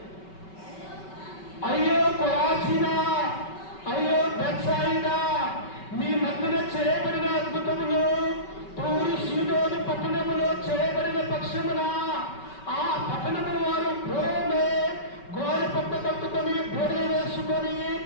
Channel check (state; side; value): late; right; 5.3 ms